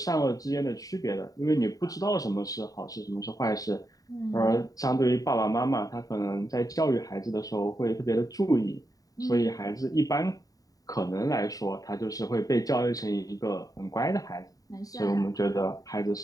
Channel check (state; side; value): late; right; 0.18 ms